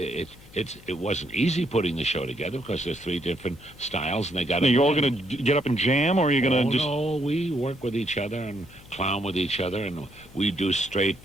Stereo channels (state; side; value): noise; left; hum, 22 dB below the sound